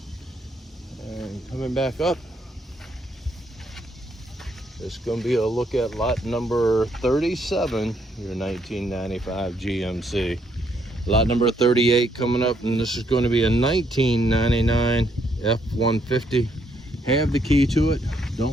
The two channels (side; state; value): both; normal; correlation 0.72